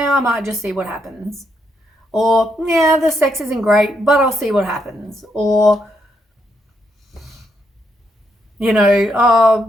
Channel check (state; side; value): normal; both; correlation 0.78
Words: I might just see what happens. Or, yeah, the sex isn't great, but I'll see what happens. Or, you know, oh,